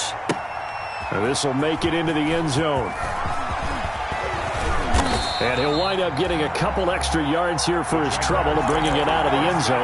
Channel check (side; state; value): both; identical; correlation 1.00